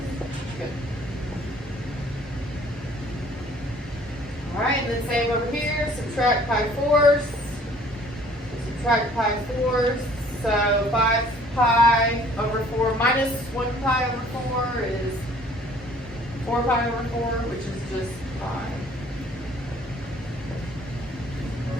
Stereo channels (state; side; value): normal; both; correlation 0.56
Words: Good. Alright, and then same over here. Subtract pi fourths. Subtract pi fourths. So 5 pi over 4 minus 1 pi over 4 is 4 pi over 4, which is just pi.